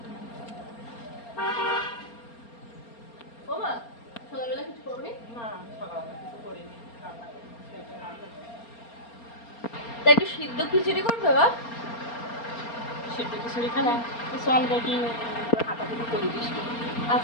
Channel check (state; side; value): late; right; 4.3 ms